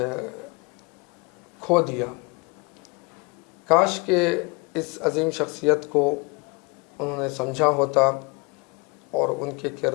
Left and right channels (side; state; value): right; quieter; 29.0 dB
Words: کھو دیا۔ کاش کہ اس عظیم شخصیت کو انہوں نے سمجھا ہوتا اور ان کے